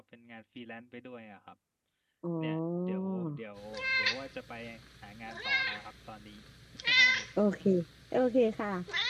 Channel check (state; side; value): identical; both; correlation 1.00